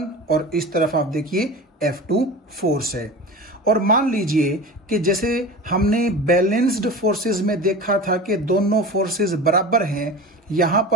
और इस तरफ आप देखिए F2 फोर्स है। और मान लीजिए कि जैसे हमने बैलेंस्ड फोर्सेस में देखा था कि दोनों फोर्सेस बराबर हैं, यहां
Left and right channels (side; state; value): both; normal; correlation 0.33